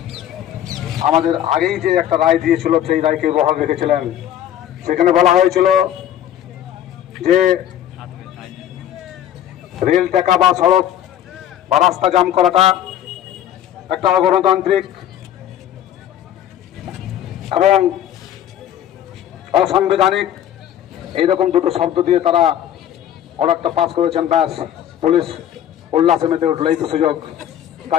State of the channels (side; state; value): right; quieter; 10.9 dB